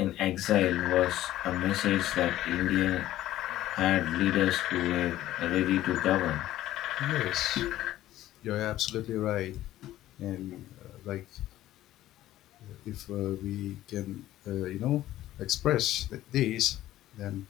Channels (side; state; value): right; quieter; 14.3 dB